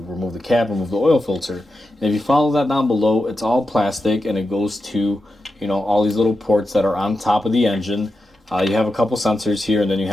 remove the cap, remove the oil filter. And if you follow that down below, it's all plastic, and it goes to, you know, all these little ports that are on top of the engine. You have a couple sensors here, and then you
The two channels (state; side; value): normal; both; correlation 0.89